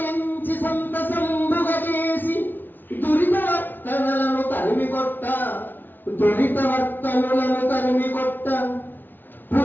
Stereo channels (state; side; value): late; right; 0.091 ms